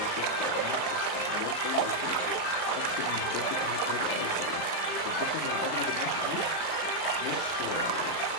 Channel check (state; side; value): late; right; 38 ms